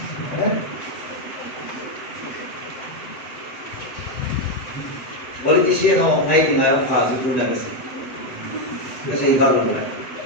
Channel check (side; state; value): right; late; 7.7 ms